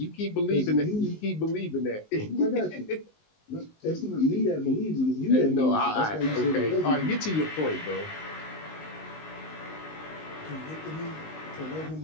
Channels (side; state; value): right; late; 19 ms